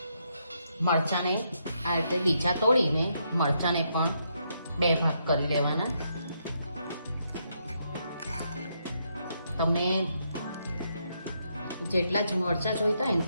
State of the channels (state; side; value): inverted; both; correlation -0.77